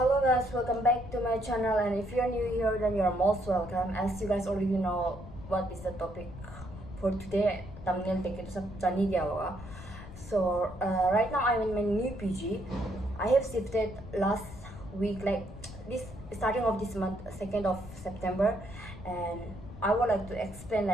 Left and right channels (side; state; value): left; noise; rumble, 14 dB below the sound